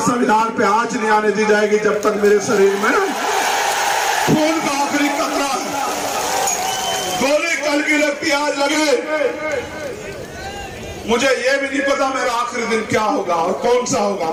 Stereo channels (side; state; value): both; identical; correlation 1.00